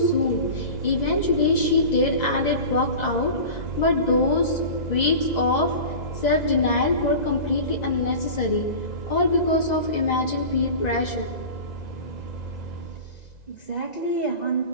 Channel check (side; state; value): right; late; 1.9 ms